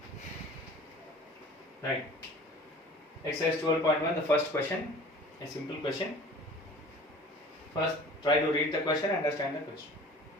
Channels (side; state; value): both; normal; correlation 0.45